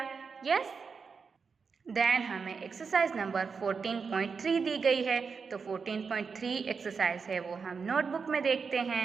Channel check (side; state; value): left; quieter; 5.4 dB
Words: यस, देन हमें एक्सरसाइज नंबर 14.3 दी गई है। तो 14.3 एक्सरसाइज है वो हम नोटबुक में देखते हैं।